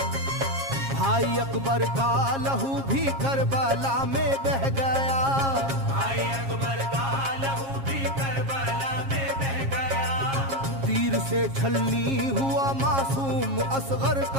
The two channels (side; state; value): left; late; 7.4 ms